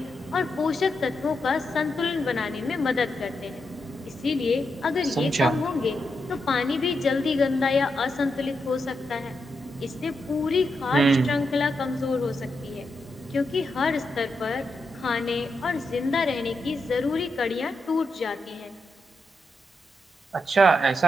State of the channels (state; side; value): normal; both; correlation 0.84